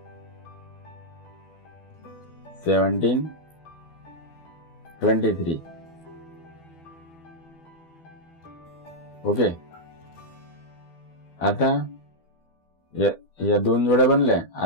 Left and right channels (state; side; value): late; right; 12 ms